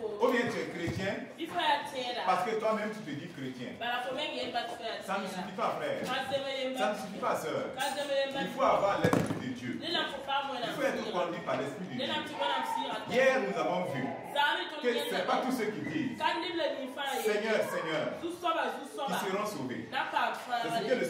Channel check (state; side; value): identical; both; correlation 1.00